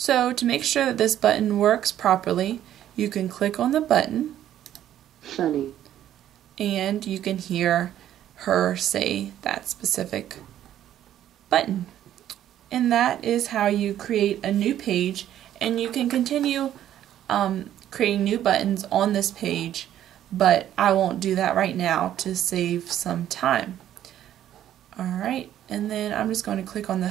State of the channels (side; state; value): left; quieter; 11.5 dB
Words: to make sure that this button works properly, you can click on the button, Sunny, and you can hear her say that specific button. And that is how you create a new page, and you can continue creating new buttons on this page, but I won't do that right now to save some time. Alright, and then I'm just going to click on the